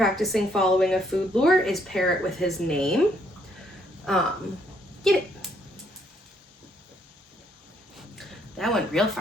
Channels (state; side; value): normal; both; correlation 0.69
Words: following a food lure is pair it with his name. Get it. That went real